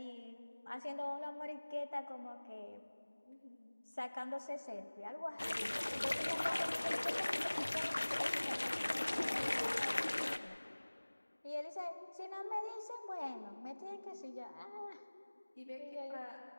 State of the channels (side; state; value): both; inverted; correlation -1.00